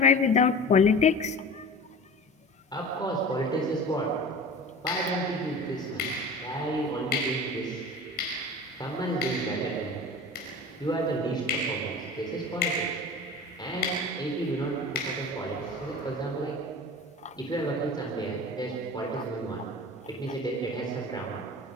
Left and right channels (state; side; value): normal; both; correlation 0.36